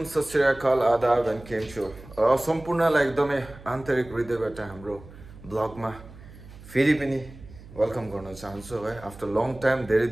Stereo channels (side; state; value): right; noise; hum, 19 dB below the sound